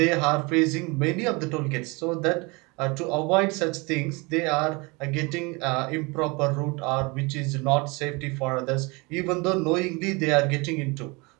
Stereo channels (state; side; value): quieter; left; 27.2 dB